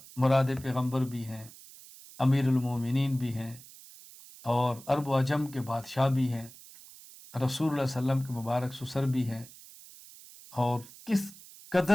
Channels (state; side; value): noise; right; hiss, 19 dB below the sound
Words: مراد پیغمبر بھی ہیں، امیر المومنین بھی ہیں، اور عرب و عجم کے بادشاہ بھی ہیں، رسول اللہ صلی اللہ علیہ وسلم کے مبارک سسر بھی ہیں، اور کس